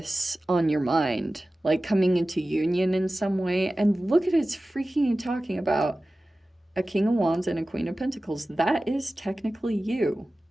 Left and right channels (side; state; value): both; normal; correlation 0.96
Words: on your mind, like coming into union in some way. And look at it's freaking talking about a King of Wands and a Queen of Pentacles. That is technically you.